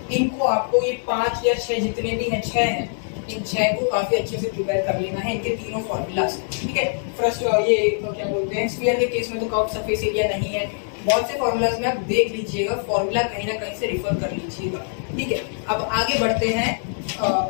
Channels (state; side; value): silent; right; digital silence